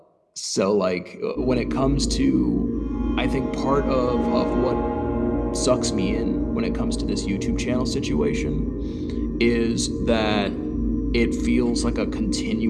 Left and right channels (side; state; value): both; identical; correlation 1.00